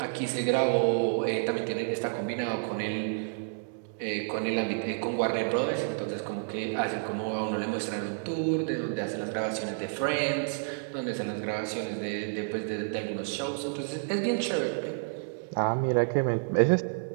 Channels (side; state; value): left; silent; digital silence